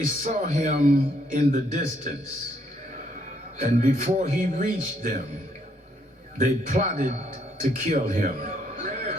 saw him in the distance, and before he reached them, they plotted to kill him.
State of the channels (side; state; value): both; normal; correlation 0.71